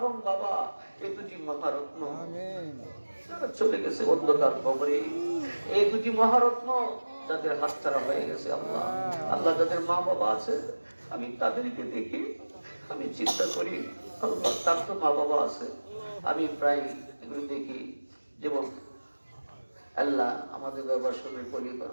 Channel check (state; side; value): inverted; both; correlation -1.00